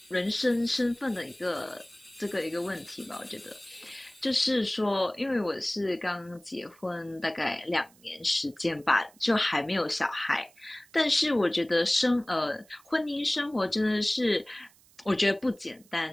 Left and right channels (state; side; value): noise; right; hiss, 28 dB below the sound